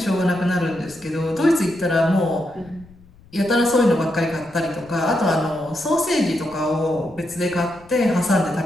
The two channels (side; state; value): left; noise; rumble, 25 dB below the sound